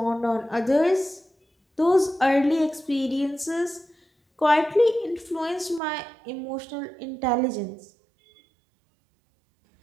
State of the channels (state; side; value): drops out; left; at 5.8 s